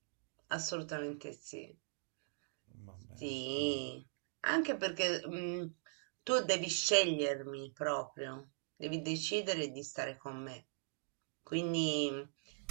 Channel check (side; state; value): left; silent; digital silence